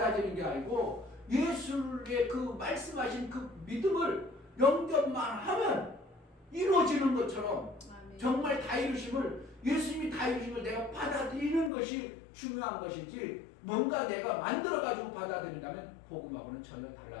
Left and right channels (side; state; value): right; drops out; at 11.7 s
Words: 게 아니고 예수의 그 말씀하신 그 믿음을 영접만 하면 이루어지는 것처럼 정말 다 이루심을, 예수님이 다 이루심을 내가 받아들이는 것이 중요한 것이지, 뭔가 내가 만들어가지고 받아들인다면 복음하고는 전혀